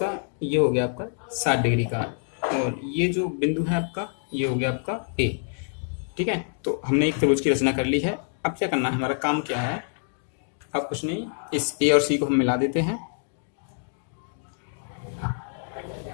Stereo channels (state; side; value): silent; right; 59 dB below the other